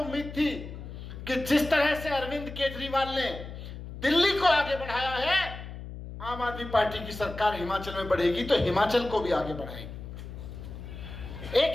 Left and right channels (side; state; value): left; noise; hum, 11 dB below the sound